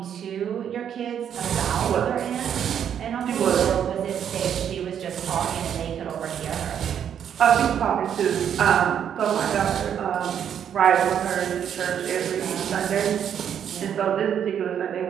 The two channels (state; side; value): quieter; left; 8.9 dB